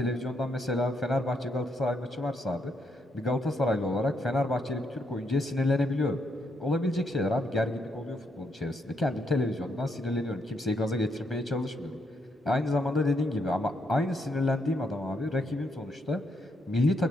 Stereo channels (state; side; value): normal; both; correlation 0.77